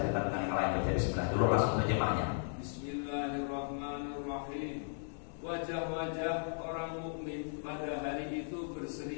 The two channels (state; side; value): silent; right; digital silence